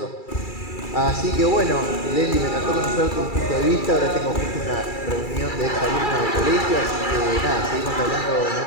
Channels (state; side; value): late; right; 2.3 ms